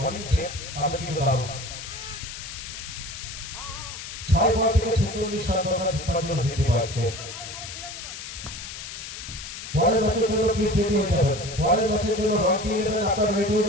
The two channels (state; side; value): noise; left; hiss, 10 dB below the sound